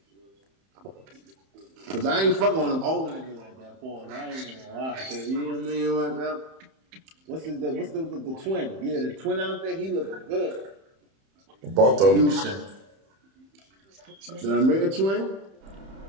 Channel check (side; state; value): left; late; 31 ms